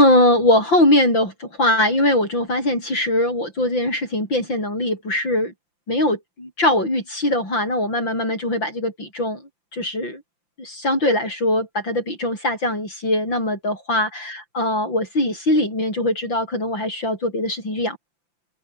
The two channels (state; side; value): late; right; 5.8 ms